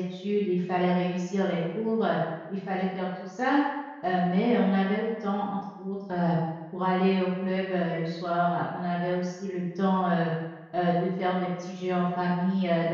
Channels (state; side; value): identical; both; correlation 1.00